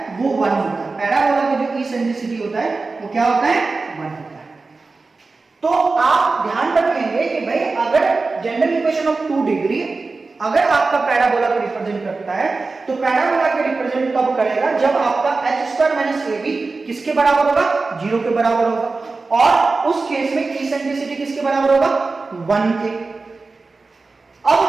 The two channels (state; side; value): quieter; left; 3.9 dB